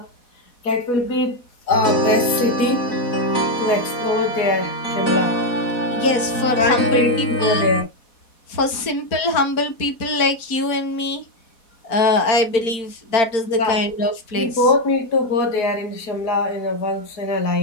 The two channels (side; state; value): right; late; 4.1 ms